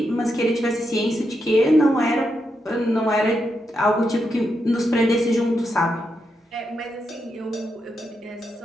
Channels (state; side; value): normal; both; correlation 0.84